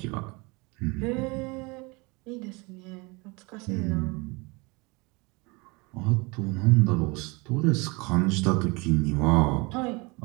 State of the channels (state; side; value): quieter; left; 27.1 dB